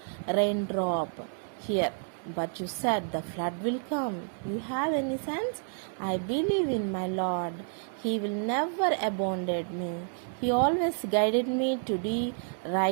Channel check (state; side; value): silent; left; 58 dB below the other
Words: raindrop here. But you said the flood will come. You have any sense? I believe in my Lord. He will never abandon me. He always guided me to do